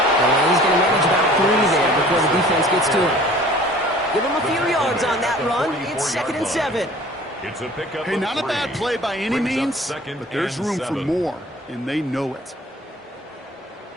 And he's going to manage about 3 there before the defense gets to him. Give him a few yards on that run. It's 2nd and 7. It's a pickup. Hey, not a bad play by any means, but there's room for more, and they know it.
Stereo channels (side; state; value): both; normal; correlation 0.48